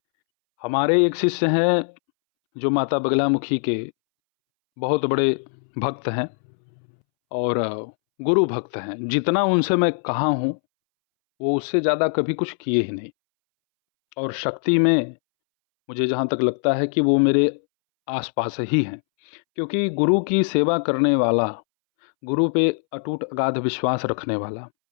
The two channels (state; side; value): silent; right; 64 dB below the other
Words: हमारे एक शिष्य हैं जो माता बगलामुखी के बहुत बड़े भक्त हैं और गुरु भक्त हैं। जितना उनसे मैं कहा हूँ, वो उससे ज़्यादा कभी कुछ किए ही नहीं। और शक्ति में मुझे जहाँ तक लगता है कि वो मेरे आस-पास ही हैं, क्योंकि गुरु की सेवा करने वाला, गुरु पे अटूट अगाध विश्वास रखने वाला,